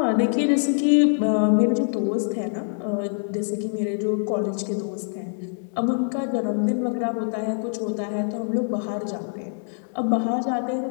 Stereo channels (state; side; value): silent; right; 62 dB below the other